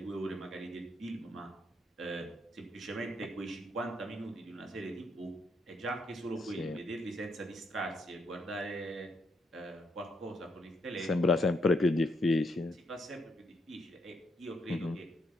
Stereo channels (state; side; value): normal; both; correlation 0.76